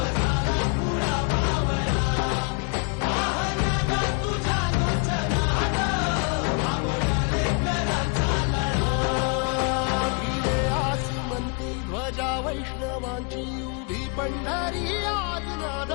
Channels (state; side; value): quieter; right; 35.4 dB